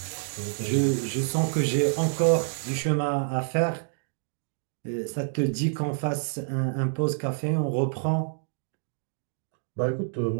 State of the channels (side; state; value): left; silent; digital silence